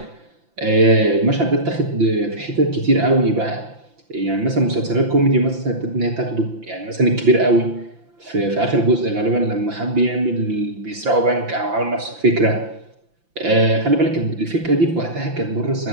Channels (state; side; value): late; left; 5.9 ms